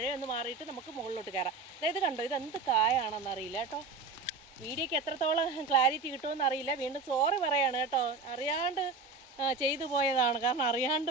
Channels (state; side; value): quieter; left; 4.1 dB